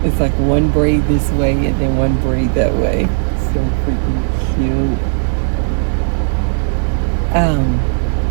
It's like one braid this way and then one braid that way. So freaking cute.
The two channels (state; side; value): silent; left; digital silence